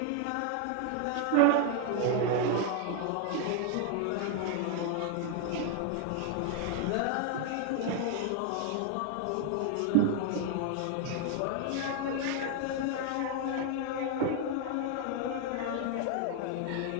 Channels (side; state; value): both; different; correlation 0.00